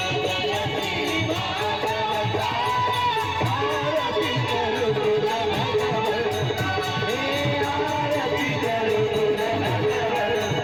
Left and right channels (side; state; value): left; noise; hum, 26 dB below the sound